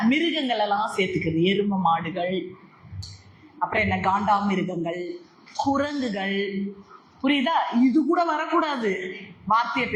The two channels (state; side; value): identical; both; correlation 1.00